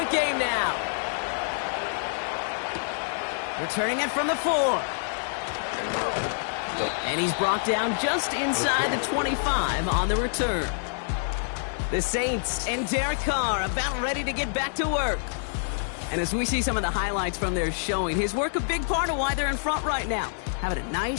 game now. Returning it from the 4. And he's brought down just inside the 25 on the return. The Saints and Derek Carr about ready to get back to work. And as we see some of the highlights from their showing, his work a big part of why they're in front right now. Having a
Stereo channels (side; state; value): right; silent; digital silence